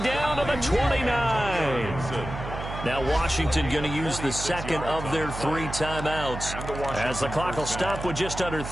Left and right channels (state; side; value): noise; right; hum, 8 dB below the sound